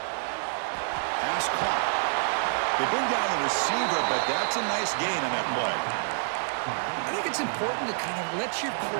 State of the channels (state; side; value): silent; left; digital silence